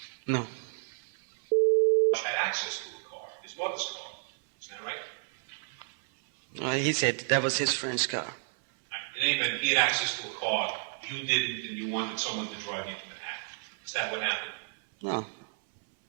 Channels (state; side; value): silent; left; 57 dB below the other